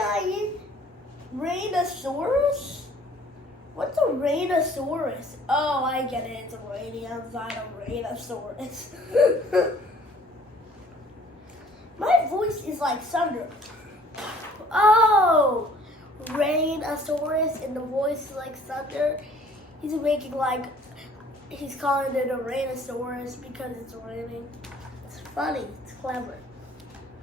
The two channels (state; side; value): normal; both; correlation 0.54